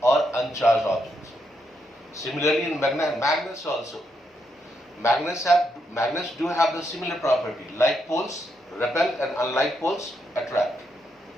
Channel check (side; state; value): both; normal; correlation 0.79